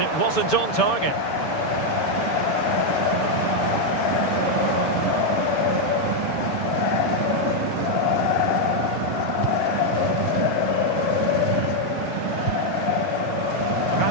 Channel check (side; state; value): right; late; 6.9 ms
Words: wasn't on target.